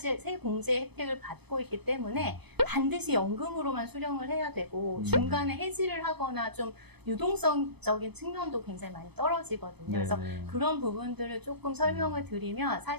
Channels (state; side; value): late; left; 0.98 ms